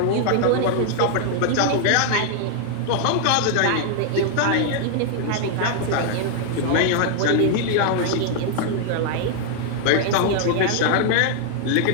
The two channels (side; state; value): both; different; correlation 0.00